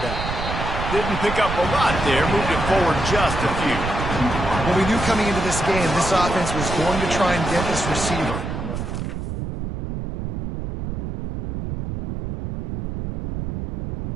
Didn't pick up a lot there, moved it forward just a few. Well, we knew coming into this game, this offense was going to try and get this receiver.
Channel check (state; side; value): noise; right; rumble, 3 dB below the sound